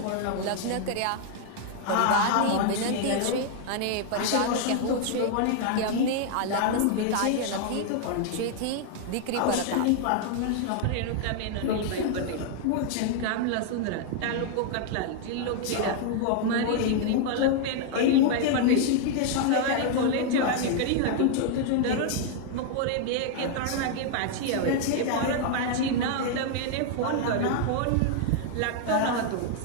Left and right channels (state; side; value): different; both; correlation 0.00